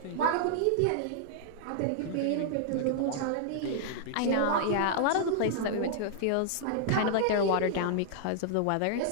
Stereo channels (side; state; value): both; different; correlation -0.01